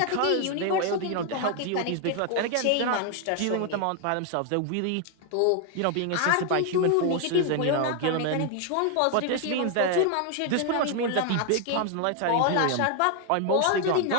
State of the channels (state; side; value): different; both; correlation 0.00